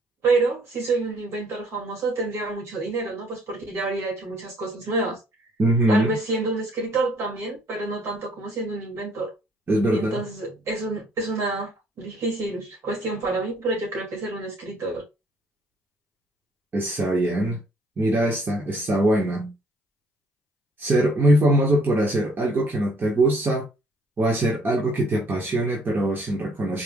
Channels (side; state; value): both; normal; correlation 0.63